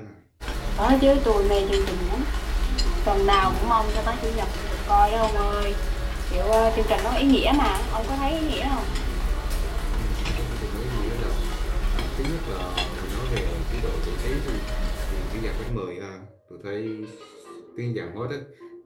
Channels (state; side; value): identical; both; correlation 1.00